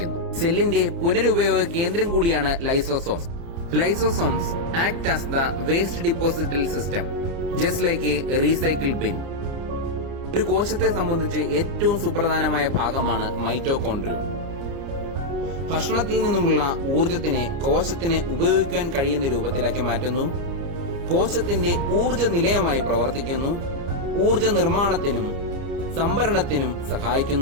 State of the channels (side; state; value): left; late; 30 ms